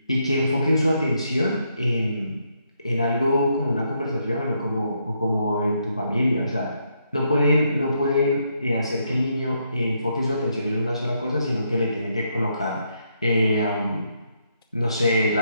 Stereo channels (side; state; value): both; inverted; correlation -0.76